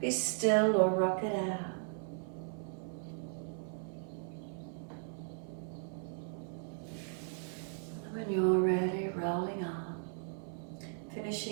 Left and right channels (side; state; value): left; silent; 53 dB below the other